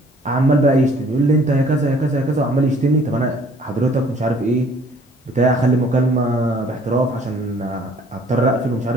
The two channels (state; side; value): normal; both; correlation 0.57